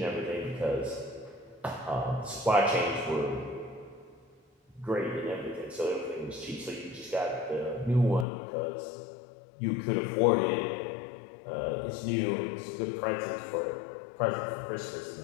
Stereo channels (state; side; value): drops out; right; at 8.2 s